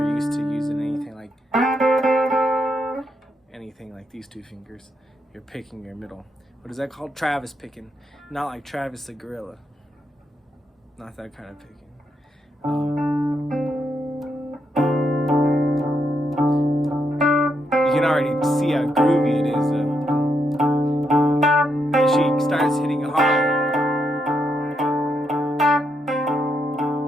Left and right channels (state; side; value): normal; both; correlation 0.80